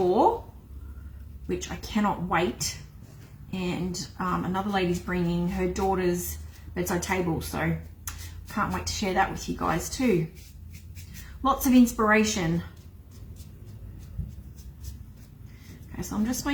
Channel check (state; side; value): identical; both; correlation 1.00